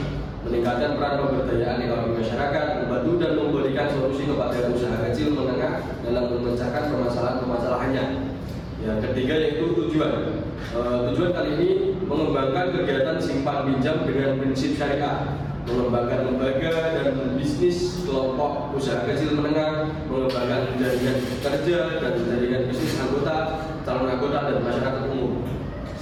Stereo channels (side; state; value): both; identical; correlation 1.00